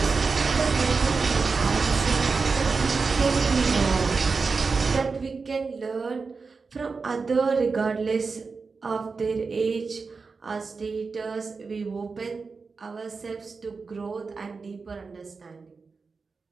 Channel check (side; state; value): left; quieter; 4.6 dB